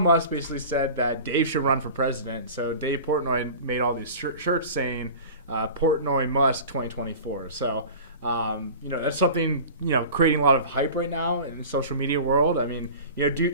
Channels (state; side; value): inverted; both; correlation -0.37